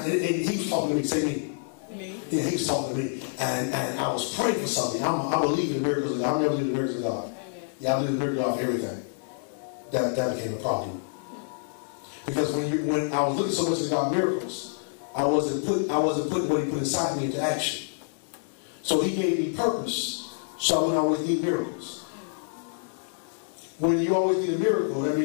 he was talking to me. Say me. Me. Yeah, he was talking to me, and I was praying for something. I believe in the miracles of God. I never believe in the miracles of God. Amen. Yeah, I believe in the miracles of God for everything. That became a problem. Because when I was looking so much at God miracles, I wasn't putting what He put inside me into action. So He gave me purpose, so I wouldn't always need miracles. When you always need a miracle, that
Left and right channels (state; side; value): silent; right; 60 dB below the other